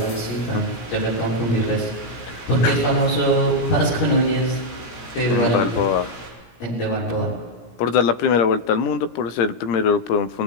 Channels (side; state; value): right; late; 17 ms